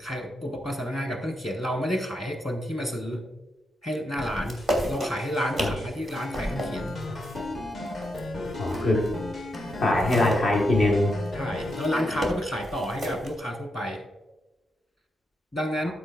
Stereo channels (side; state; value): both; normal; correlation 0.83